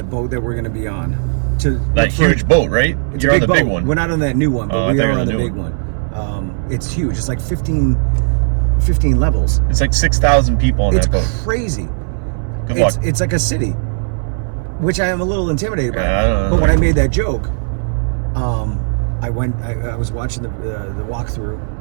boat that we're going to be on. That huge boat, right? It's You're a on big the boat. big one. We're not on that new one, but we are on the big one. It's huge. It's like 15 levels. It's like 6,000 people on that boat. It's crazy. Good luck. It's like a city, which I am a little intimidated by. I don't know. But when I made that joke, I was watching the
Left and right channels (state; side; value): silent; left; 66 dB below the other